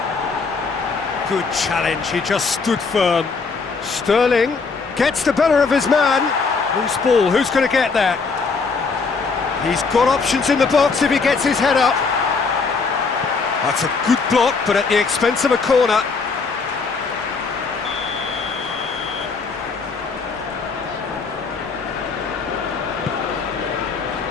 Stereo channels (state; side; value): quieter; right; 4.7 dB